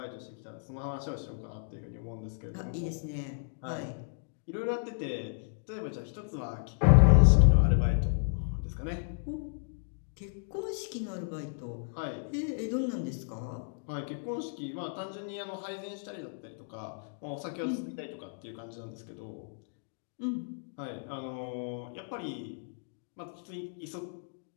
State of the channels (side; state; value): right; silent; digital silence